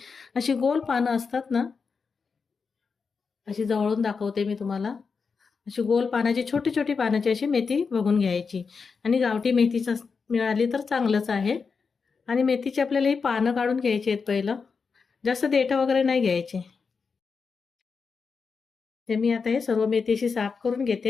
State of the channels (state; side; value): quieter; right; 5.2 dB